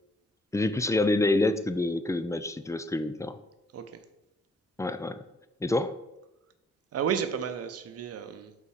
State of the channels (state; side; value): normal; both; correlation 0.64